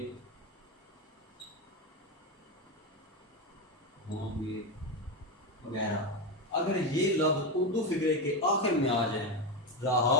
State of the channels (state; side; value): normal; both; correlation 0.13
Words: होंगे वगैरह। अगर ये लफ्ज उर्दू फिक्रे के आखिर में आ जाए, रहा